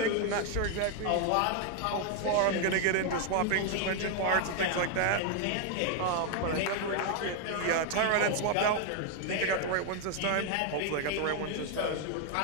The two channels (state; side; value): different; both; correlation 0.00